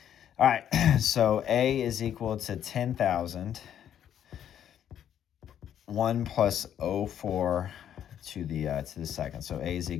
All right. So A is equal to 10,000. 1 plus 0.4 to the second. So A is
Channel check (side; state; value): right; quieter; 9.9 dB